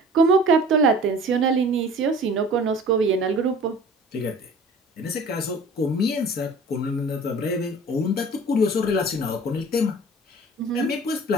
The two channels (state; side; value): normal; both; correlation 0.45